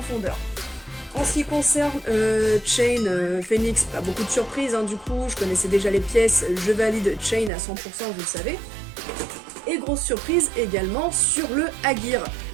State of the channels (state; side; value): drops out; left; at 7.5 s